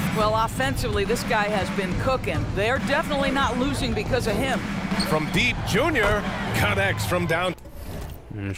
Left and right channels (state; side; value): identical; both; correlation 1.00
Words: Well, offensively, this guy has been cooking. They're definitely not losing because of him. From deep, Junior connects from down. Let me